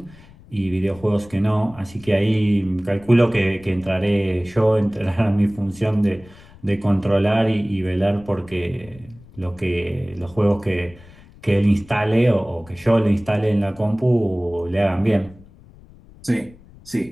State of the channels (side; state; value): left; noise; rumble, 23 dB below the sound